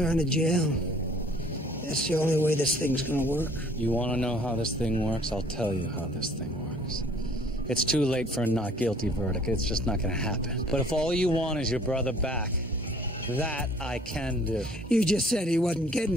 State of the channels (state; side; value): normal; both; correlation 0.55